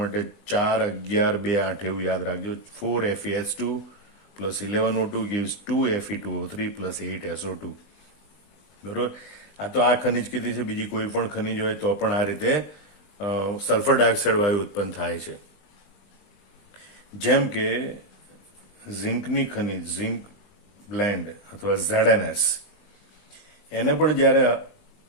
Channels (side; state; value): right; late; 20 ms